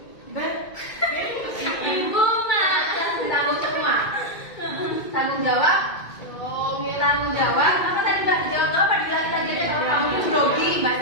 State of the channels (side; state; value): right; late; 2.2 ms